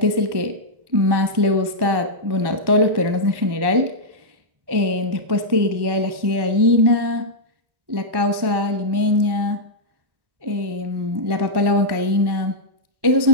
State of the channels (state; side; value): late; left; 1.1 ms